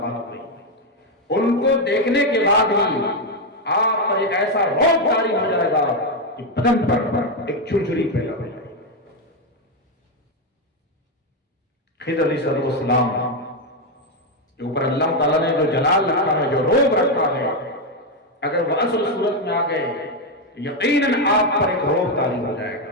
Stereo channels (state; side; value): normal; both; correlation 0.05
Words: ہوئی۔ ان کو دیکھنے کے بعد ہی آپ پر ایک ایسا روب جاری ہو جائے گا کہ بدن پر ایک جھرجھری پیدا ہو جائے گی۔ خضر علیہ السلام کے اوپر اللہ تعالیٰ نے جو جلال رکھا ہے، جو روب رکھا ہے، اگر وہ اصل صورت میں آ گئے تو یقیناً آپ پر ایک روب طاری ہو جائے